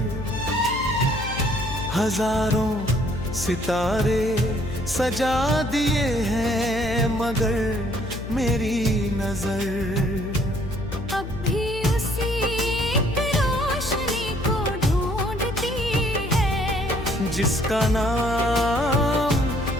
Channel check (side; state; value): left; noise; hum, 9 dB below the sound